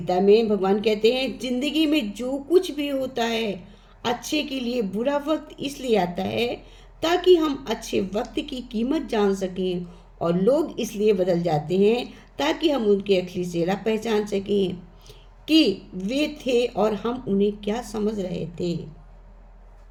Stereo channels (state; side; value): identical; both; correlation 1.00